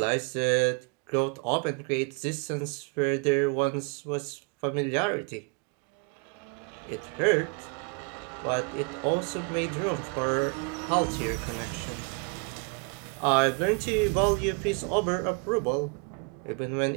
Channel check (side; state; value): left; quieter; 33.5 dB